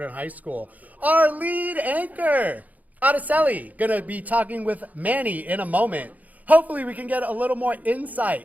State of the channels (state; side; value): late; left; 0.078 ms